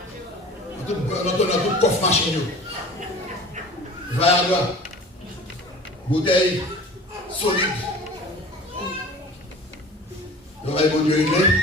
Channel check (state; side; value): normal; both; correlation 0.42